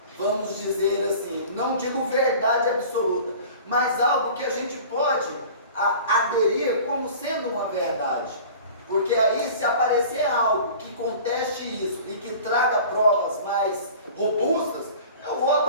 vamos dizer assim, não digo verdade absoluta, mas algo que a gente pode aderir como sendo uma verdade. Porque aí, se aparecer algo que conteste isso e que traga provas mais robustas, eu vou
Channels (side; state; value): both; inverted; correlation -0.42